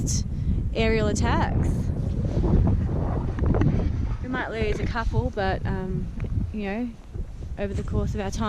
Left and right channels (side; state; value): both; identical; correlation 1.00